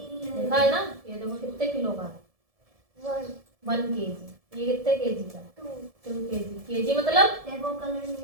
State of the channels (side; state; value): left; late; 1.7 ms